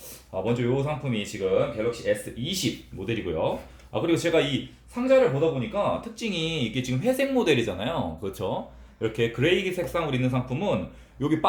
먼저 이 상품이 지금 갤럭시 S20 모델이고요. 그리고 제가 이 상자를 보다 보니까 특징이 이게 지금 회색 모델이잖아요. 그렇죠? 이렇게 그레이 색상으로 있는 상품은 여기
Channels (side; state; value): both; identical; correlation 1.00